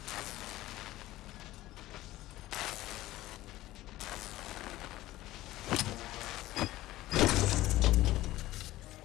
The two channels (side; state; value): right; quieter; 16.4 dB